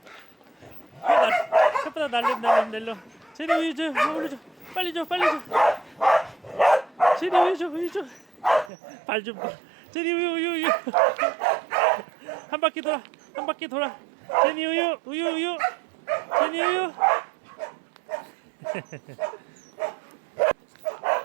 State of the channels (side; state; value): left; drops out; at 8.7 s